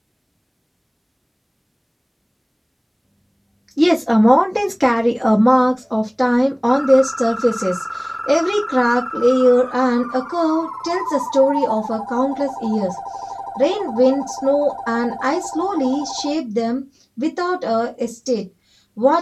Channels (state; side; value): identical; both; correlation 1.00